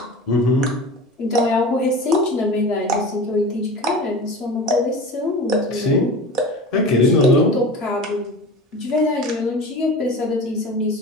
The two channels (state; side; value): normal; both; correlation 0.33